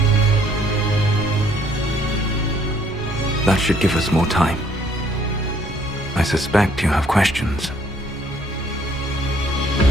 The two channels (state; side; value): normal; both; correlation 0.64